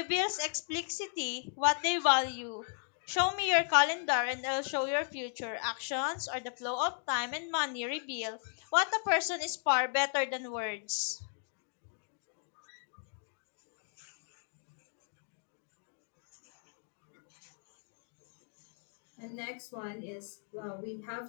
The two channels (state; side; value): silent; right; 54 dB below the other